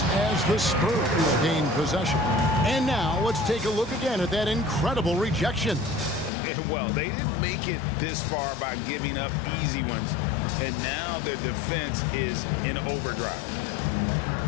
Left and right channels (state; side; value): drops out; right; at 6.3 s